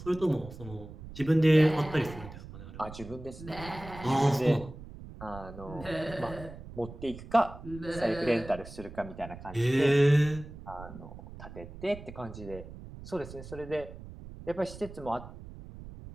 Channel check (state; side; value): noise; right; rumble, 14 dB below the sound